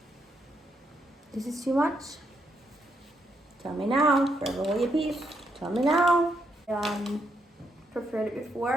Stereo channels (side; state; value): both; normal; correlation 0.78